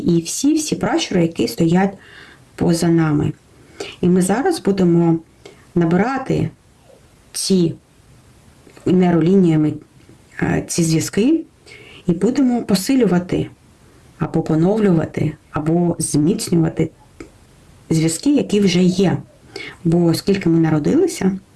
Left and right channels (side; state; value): both; identical; correlation 1.00